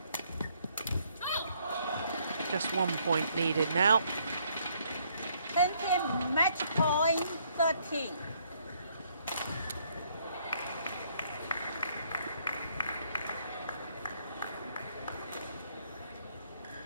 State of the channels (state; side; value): inverted; both; correlation -0.68